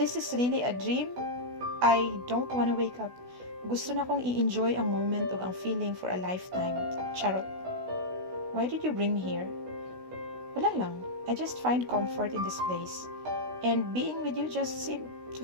is really a dream, I don't wanna wake up. Gusto na kong i-enjoy ang moment ug ang feeling for a lifetime. Charot. Why did you bring me here? Wala lang. I just find comfort in this place. And being with you just seemed to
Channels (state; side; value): late; left; 16 ms